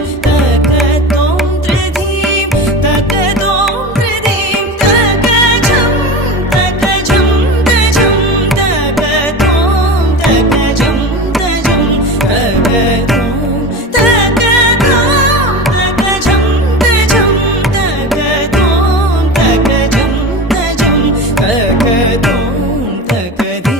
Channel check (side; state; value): both; normal; correlation 0.29